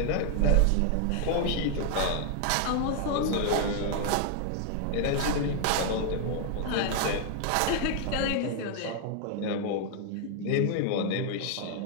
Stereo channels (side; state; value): both; different; correlation 0.00